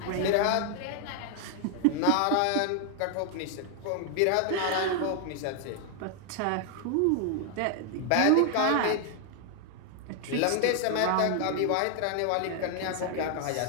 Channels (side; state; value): both; different; correlation 0.00